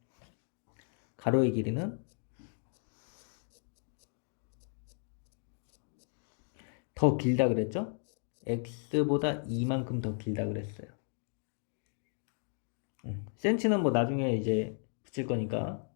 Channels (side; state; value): right; silent; 54 dB below the other